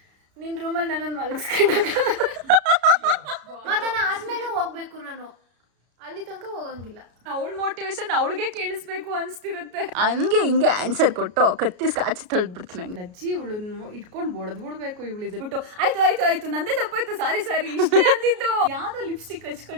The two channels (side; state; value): left; late; 33 ms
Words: ನಿನ್ ರೂಮಲ್ಲಿ ನನ್ನನ್ನು ಮಲಗಿಸ್ಕೊಂಡಾಗ ಮತನ ಆದ್ಮೇಲೆ ಹೋಗ್ಬೇಕು, ನಾನು ಅಲ್ಲಿ ತನಕ ಹೋಗಂಗಿಲ್ಲ. ಅವಳ ಮೋಟಿವೇಶನ್ ಅವಳಿಗೆ ಕೇಳಿಸ್ಬೇಕು ಅನ್ಸ್ತಿರುತ್ತೆ. ಹಂಗೆ ಹಿಂಗೆ ಆನ್ಸರ್ ಕೊಟ್ಟು ಕತ್ತಿಸ್ ಕಾಚಿ ತೊಳ್ದ್ಬಿಡ್ತೀನಿ. ಲಜ್ಜಿ ಇವಳನ್ನು ಇಟ್ಕೊಂಡು ಬಡದ್ಬಿಡ್ಬೇಕು ಇವಳಿದ್ದು ಬಿಟ್ಟು. ಆಯ್ತು ನಂದೇ ತಪ್ಪಾಯ್ತು, ಸಾರಿ ಇಷ್ಟೇ ಅಂದಿದ್ದು. ಯಾವ್ದೋ ಲಿಪ್ಸ್ಟಿಕ್